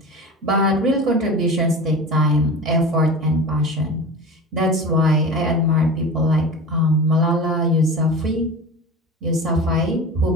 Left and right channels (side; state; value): both; normal; correlation 0.32